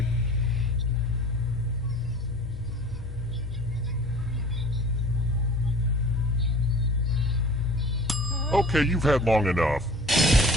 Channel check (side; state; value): both; normal; correlation 0.44